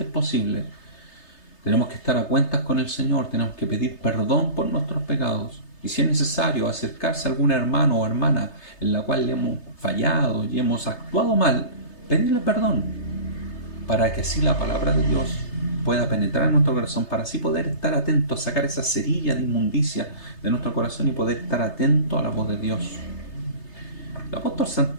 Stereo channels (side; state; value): right; late; 3.3 ms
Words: posible, tenemos que estar a cuentas con el Señor, tenemos que pedir perdón por nuestros pecados. Y si es necesario acercarse a algún hermano o hermana en la cual le hemos fallado y hemos actuado mal, pedirle perdón, para que así la palabra de Dios pueda penetrar en nuestro corazón, para así poder estar atentos, sacar esa cerilla de inmundicia de nuestro corazón y poder estar atento a la voz de Dios. El apóstol